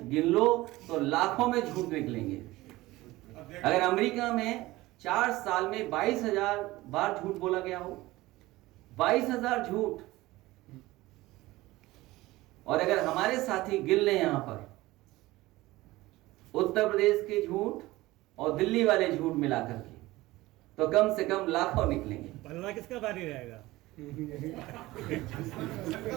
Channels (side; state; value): left; quieter; 18.7 dB